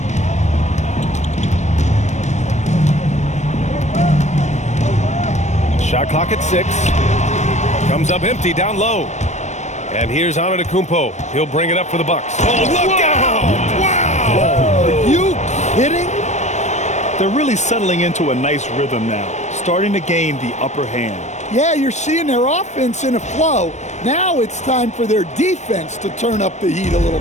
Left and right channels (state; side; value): late; right; 0.34 ms